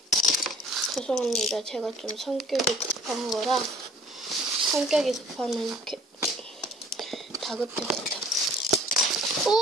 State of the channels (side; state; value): both; normal; correlation 0.52